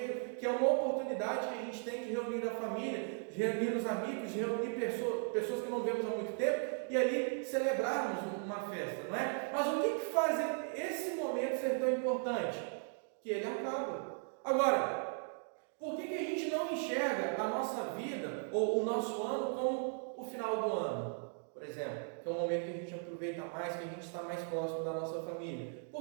que é uma oportunidade que a gente tem de reunir a família, de reunir os amigos, de reunir pessoas que não vemos há muito tempo e ali celebrarmos uma festa, não é? Mas o que faz esse momento ser tão importante? Que ele acaba. Agora, por que a gente não enxerga a nossa vida ou o nosso ano como o final do ano? Por exemplo, que é um momento que a gente aproveita mais, que a gente está mais próximo da nossa família.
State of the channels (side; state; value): left; silent; 53 dB below the other